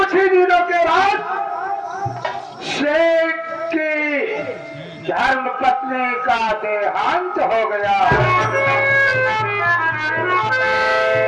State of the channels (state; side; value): identical; both; correlation 1.00